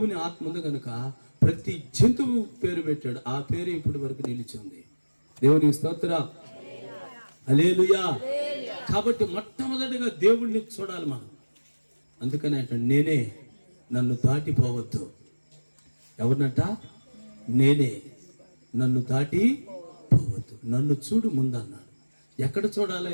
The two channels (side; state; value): both; inverted; correlation -1.00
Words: ఆత్మ ఉంది కనుక ప్రతి జంతువు పేరు పెట్టాడు. ఆ పేరు ఇప్పటి వరకు నిలిచి ఉంది. దేవునికి స్తోత్రం. హల్లెలూయా. కాబట్టి మొట్టమొదటిగా దేవుణ్ణి చూడాలి మనం. అందుకని అంటే నేనే, నన్ను దాటిపోవద్దు. ఎవరినట? నేనే, నన్ను దాటి పోవద్దు. నన్ను చూడు ముందన్నాడు. ఎక్కడ